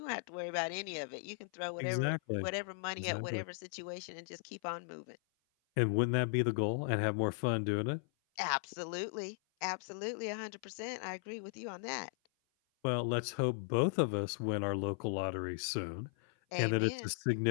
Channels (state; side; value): silent; right; 53 dB below the other